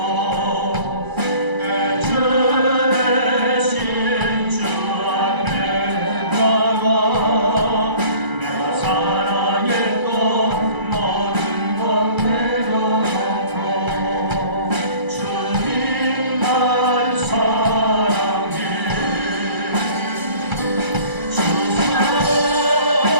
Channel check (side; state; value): left; late; 2.3 ms